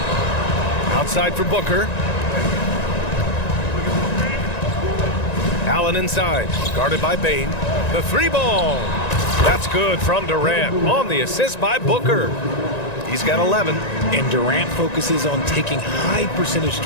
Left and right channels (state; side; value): late; right; 1.9 ms